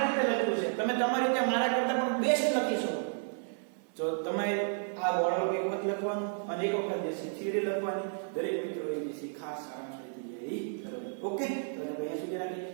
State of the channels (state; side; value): silent; left; 56 dB below the other